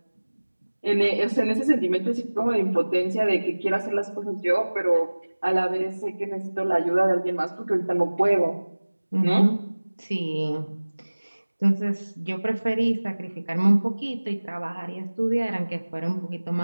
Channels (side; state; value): both; inverted; correlation -1.00